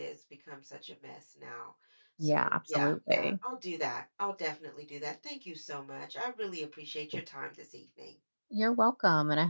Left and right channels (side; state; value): both; inverted; correlation -1.00